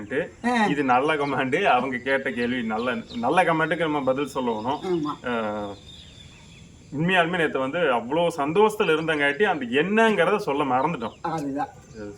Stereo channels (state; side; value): identical; both; correlation 1.00